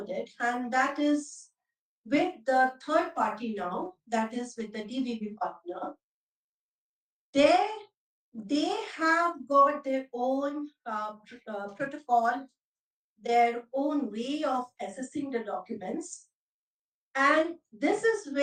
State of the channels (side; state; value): both; identical; correlation 1.00